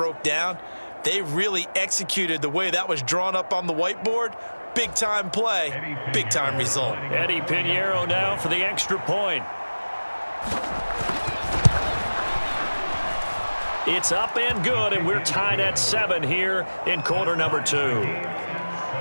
down. They really executed the way that was drawn up on the whiteboard. Big-time play, big-time result. Eddie Pinheiro now for the extra point. It's up and good, and we're tied at 7 here in quarter number 2.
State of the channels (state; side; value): inverted; both; correlation -1.00